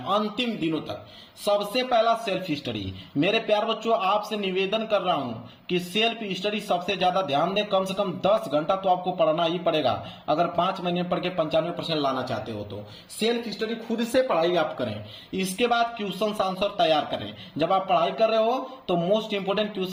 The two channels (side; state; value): both; identical; correlation 1.00